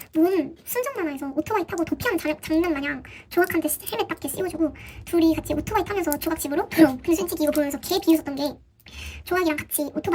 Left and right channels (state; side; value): identical; both; correlation 1.00